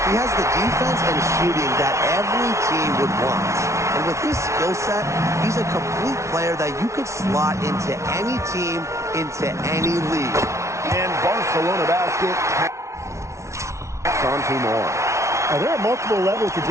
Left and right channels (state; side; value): late; left; 0.14 ms